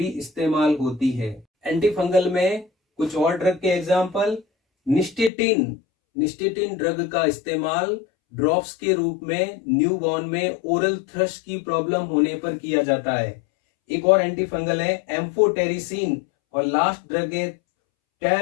इस्तेमाल होती है। एंटीफंगल में कुछ और ड्रग के एग्जाम्पल, निस्टेटिन ड्रग का इस्तेमाल ड्रॉप्स के रूप में न्यूबॉर्न में ओरल थ्रश की प्रॉब्लम होने पर किया जाता है। एक और एंटीफंगल है एम्फोटेरिसिन, और लास्ट ड्रग है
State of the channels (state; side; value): drops out; right; at 5.3 s